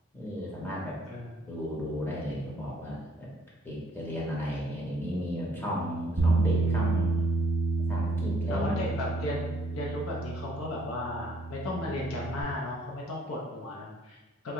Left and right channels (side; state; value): both; normal; correlation 0.63